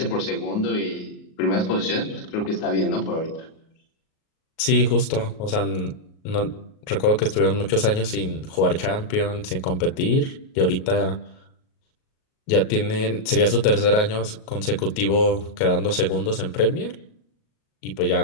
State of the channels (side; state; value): right; late; 38 ms